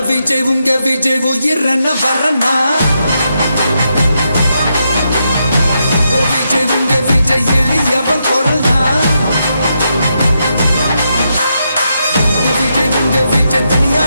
விஜய் உங்க விஜய் உயிரன வரனா விஜய் உங்க விஜய் எளியவன் குரல்னா விஜய் உங்க விஜய்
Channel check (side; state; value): both; inverted; correlation -0.82